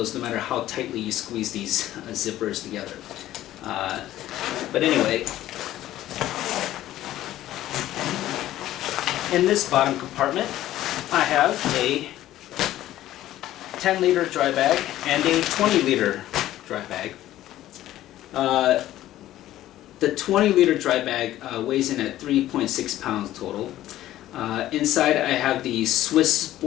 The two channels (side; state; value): right; quieter; 13.9 dB